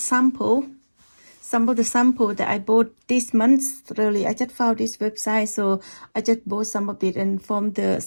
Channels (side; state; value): both; inverted; correlation -1.00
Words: of the sample that I bought this month. Really, I just found this website, so I just bought some of it, and